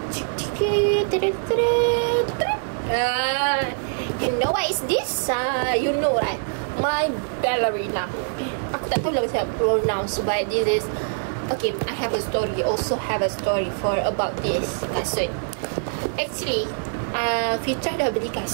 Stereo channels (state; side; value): silent; left; digital silence